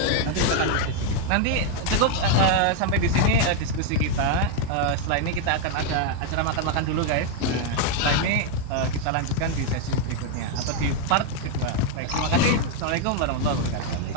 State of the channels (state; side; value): different; both; correlation 0.01